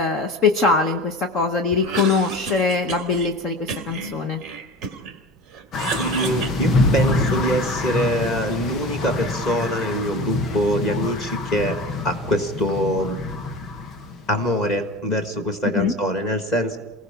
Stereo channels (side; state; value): both; normal; correlation 0.34